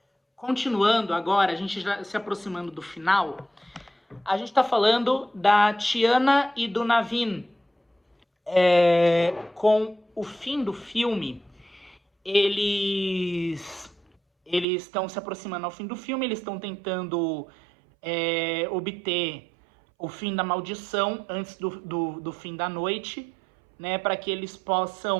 continuando agora, a gente já se aproximando do final, a gente está falando da Tiana e do Navin. Com o fim do filme, eles estão se aproximando ao fim do filme, eles estão tentando obter o fim da maldição antes do fim da noite, né, para que eles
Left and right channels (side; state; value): left; drops out; at 14.7 s